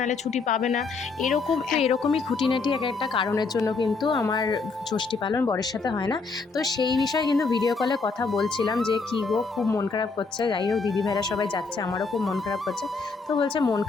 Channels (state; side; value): quieter; right; 4.3 dB